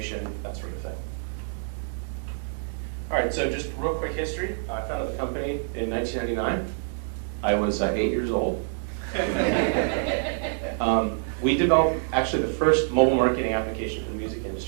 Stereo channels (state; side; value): silent; left; digital silence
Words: that sort of thing. All right, so just real quick history. I founded the company in 1999. I was 8 years old. We developed actually the first mobile marketing application for the music